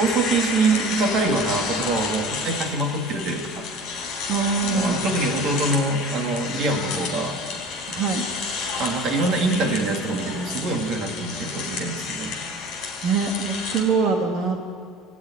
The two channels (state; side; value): normal; both; correlation 0.40